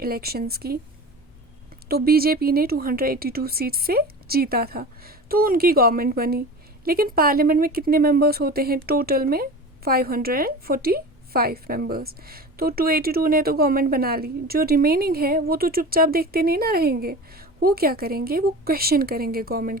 की, तो बीजेपी ने 282 सीट से जीता था, तो उनकी गवर्नमेंट बनी। लेकिन पार्लियामेंट में कितने मेंबर्स होते हैं? टोटल में 545 मेंबर्स। तो 282 ने तो गवर्नमेंट बना ली, जो रिमेनिंग है वो तो चुपचाप देखते नहीं ना रहेंगे। वो क्या करेंगे? वो क्वेश्चन करेंगे गवर्नमेंट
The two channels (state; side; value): normal; both; correlation 0.33